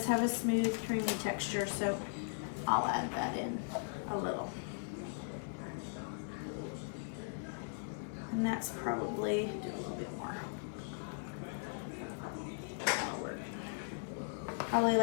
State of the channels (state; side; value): silent; right; digital silence